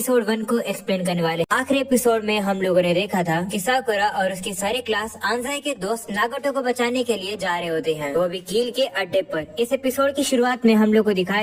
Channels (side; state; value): both; identical; correlation 1.00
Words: 1 को एक्सप्लेन करने वाले। आखिरी एपिसोड में हम लोगों ने देखा था कि साकुरा और उसकी सारी क्लास आंजाई के दोस्त नागोटो को बचाने के लिए जा रहे होते हैं, वो भी कील के अड्डे पर। इस एपिसोड की शुरुआत में हम लोग को